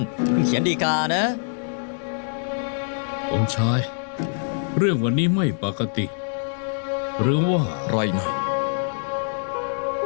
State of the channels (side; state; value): right; silent; digital silence